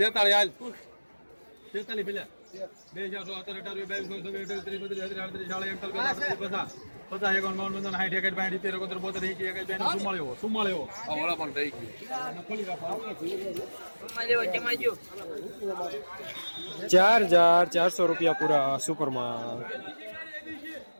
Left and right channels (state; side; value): inverted; both; correlation -1.00